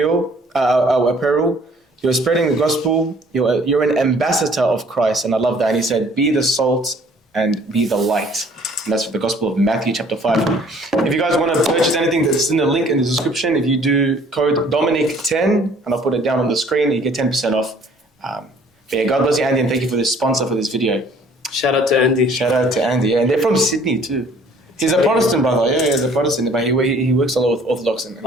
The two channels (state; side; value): normal; both; correlation 0.57